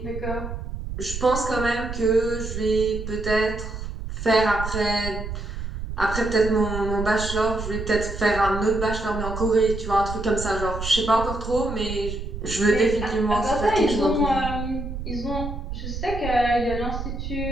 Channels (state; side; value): noise; right; rumble, 7 dB below the sound